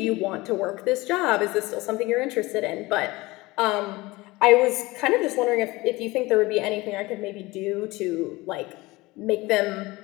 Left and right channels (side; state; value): right; quieter; 21.2 dB